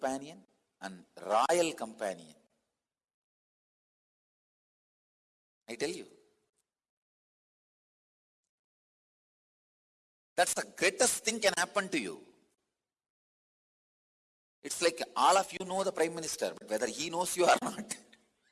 and royal companion. I tell you. That's the greatest thing can happen to you. It's like all of you know the Prime Minister, but whether he knows you or not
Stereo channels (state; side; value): identical; both; correlation 1.00